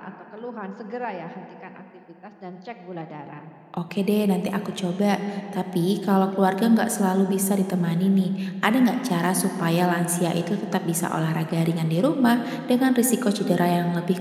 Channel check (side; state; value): both; identical; correlation 1.00